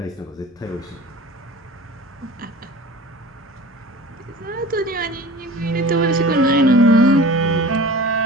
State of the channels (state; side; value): normal; both; correlation 0.39